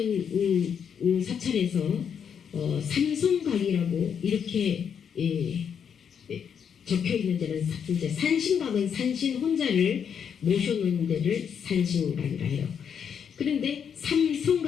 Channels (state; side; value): quieter; right; 7.6 dB